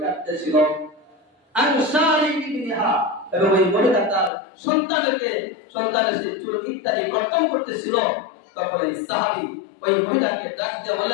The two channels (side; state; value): right; drops out; at 4.3 s